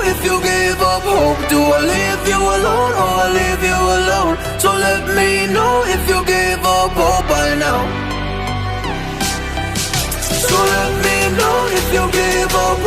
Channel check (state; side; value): identical; both; correlation 1.00